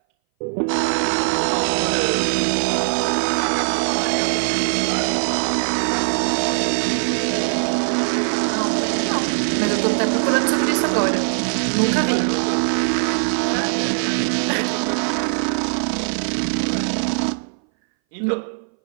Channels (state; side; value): silent; left; 61 dB below the other